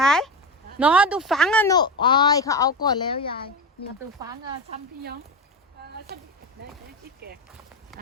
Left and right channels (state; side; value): normal; both; correlation 0.19